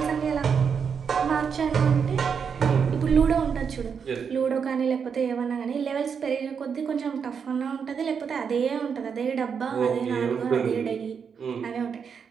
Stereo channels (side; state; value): left; quieter; 6.6 dB